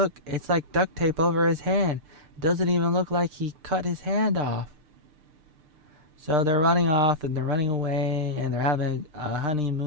it's like duct tape over his hand. It doesn't even look like he cut his hand off. So they're running off and they're running away and they're having a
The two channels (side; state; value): left; late; 6.7 ms